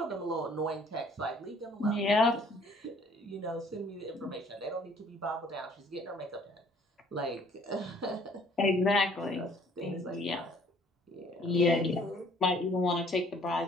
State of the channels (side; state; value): both; normal; correlation 0.58